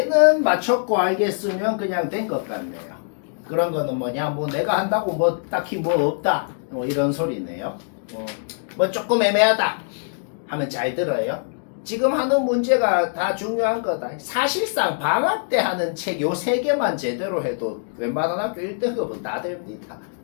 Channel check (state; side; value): silent; right; digital silence